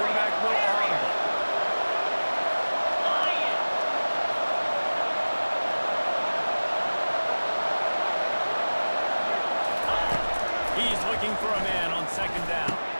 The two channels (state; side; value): inverted; both; correlation -1.00